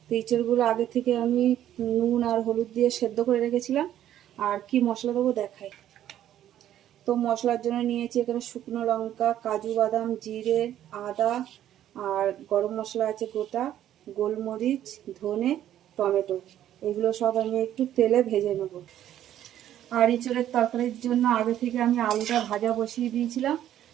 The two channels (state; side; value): quieter; left; 11.6 dB